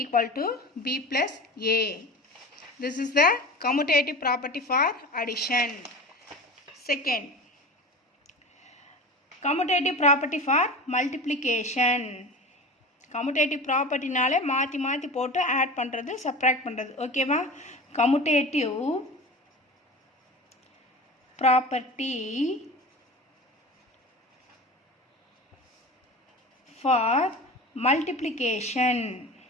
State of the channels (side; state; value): both; normal; correlation 0.33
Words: equal to b plus a. this is the commutative property for addition. Second, commutative property for multiplication. Commutative ப்ராப்பர்ட்டினாலே மாற்றி மாற்றி போட்டு add பண்ணுறது, subtract பண்ணுறது. ஓகேவா. Commutative property for multiplication.